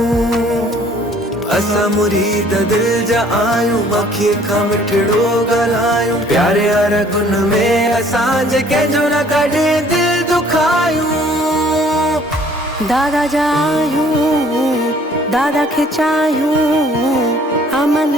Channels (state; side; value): normal; both; correlation 0.57